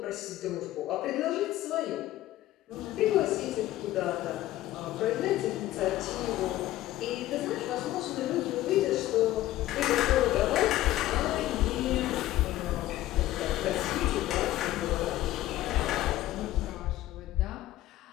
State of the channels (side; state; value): right; quieter; 15.0 dB